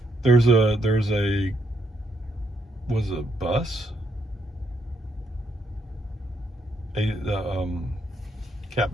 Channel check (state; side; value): normal; both; correlation 0.74